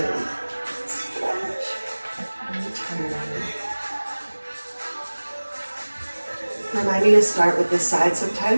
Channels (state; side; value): inverted; both; correlation -1.00